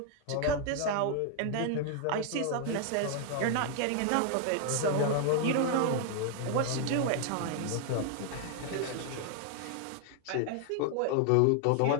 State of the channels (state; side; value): different; both; correlation 0.00